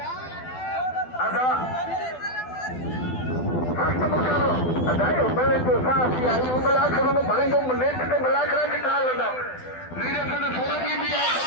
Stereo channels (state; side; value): late; right; 12 ms